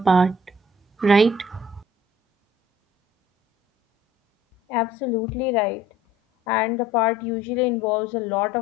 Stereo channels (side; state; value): both; normal; correlation 0.55